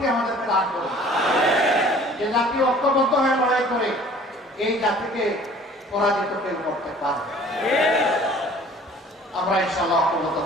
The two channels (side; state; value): both; normal; correlation 0.50